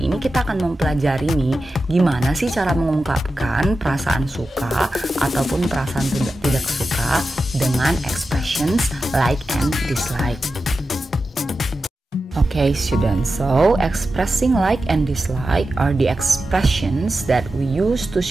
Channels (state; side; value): normal; both; correlation 0.92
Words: ini kita akan mempelajari nih, gimana sih cara mengungkapkan perasaan suka ataupun perasaan tidak suka dengan expressions like and dislike. Okay students, so expressing like and dislike are the expressions that we use to